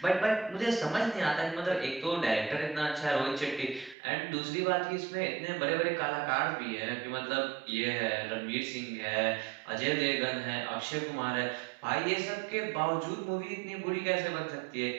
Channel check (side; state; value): left; drops out; at 4.0 s